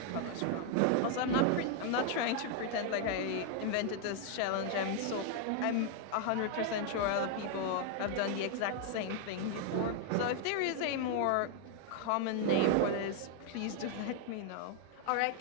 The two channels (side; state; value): both; different; correlation 0.00